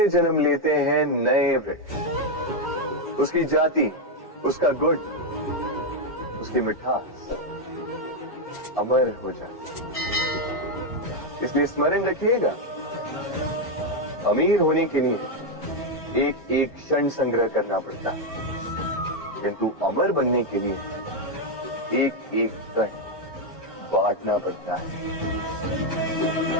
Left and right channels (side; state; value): both; normal; correlation 0.03